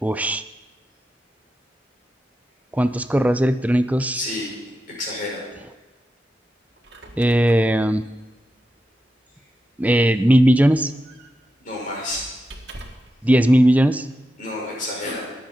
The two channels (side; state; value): both; normal; correlation 0.89